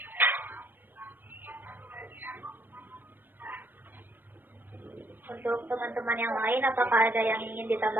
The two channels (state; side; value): late; left; 0.093 ms